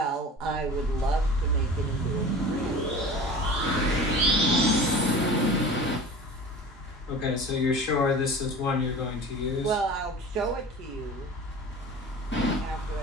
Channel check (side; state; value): both; normal; correlation 0.37